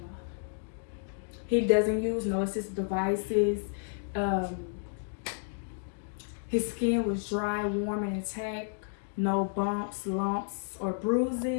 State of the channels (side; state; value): right; silent; digital silence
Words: He doesn't use no assistive devices. His skin was dry, warm, and intact. No bumps, lumps, or